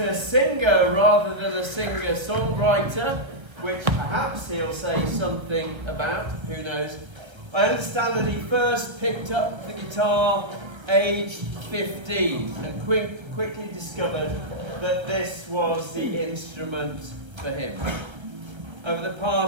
rather than a singer-songwriter, which perhaps he'll say something about, who knows. I understand that he first picked up the guitar aged 15 and quickly discovered that this was the instrument for him. Over the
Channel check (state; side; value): late; left; 1.3 ms